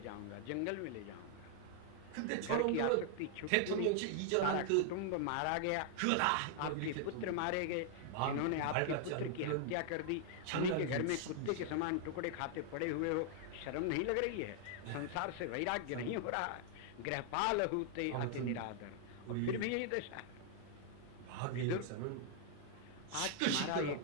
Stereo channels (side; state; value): both; different; correlation 0.00